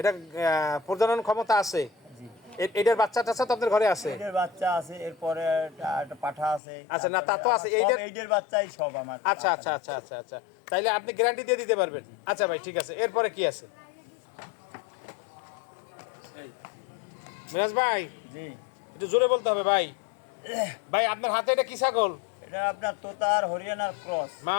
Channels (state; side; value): drops out; right; at 6.6 s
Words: প্রজনন ক্ষমতা আছে? এটার বাচ্চা টাচ্চা তো আপনার ঘরে আছে? এটার বাচ্চা আছে, এরপরে একটা পাঠা আছে। আচ্ছা, না তা তো আছে, এইটার বাচ্চাই সব আমার। আচ্ছা আচ্ছা আচ্ছা আচ্ছা আচ্ছা, তাইলে আপনি গ্যারান্টি দিয়ে দিতে পারবেন? আচ্ছা ভাই, ঠিক আছে। এরপরে কি আছে মিরাজ ভাই? জি, একটু জোরে বলতে হবে ভাই। ভাই, আপনার হাতে এটা কি ছাগল? এটা আপনার তোতার হরিয়ানার ক্রস।